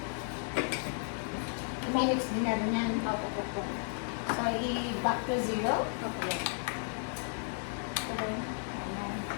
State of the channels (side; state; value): right; silent; 55 dB below the other